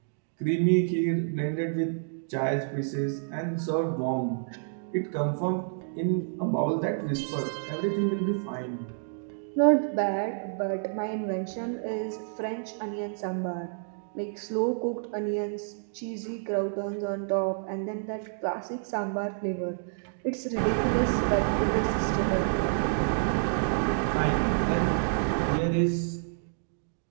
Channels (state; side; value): silent; left; digital silence